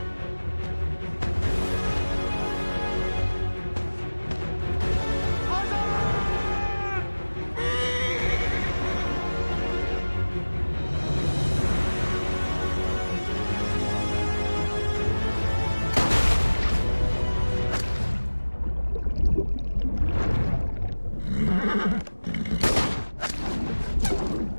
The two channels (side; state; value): both; inverted; correlation -1.00